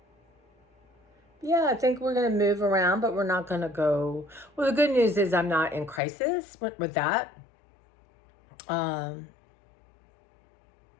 yeah, I think we're going to move around, but we're not going to go. Well, the good news is I'm not in crisis with that. So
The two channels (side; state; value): right; drops out; at 6.0 s